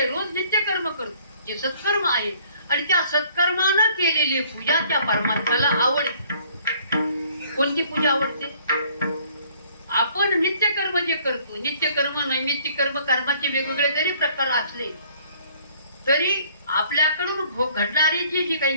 रोज नित्य कर्म करतो जे सत्कर्म आहे आणि त्या सत्कर्मानं केलेली पूजा त्या परमात्म्याला आवडते. कोणती पूजा आवडते? आपण नित्यकर्म जे करतो, नित्यकर्म नैमित्तिक कर्म, कर्माचे वेगवेगळे जरी प्रकार असले तरी आपल्याकडून घडणारी जी काही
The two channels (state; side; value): inverted; both; correlation -0.59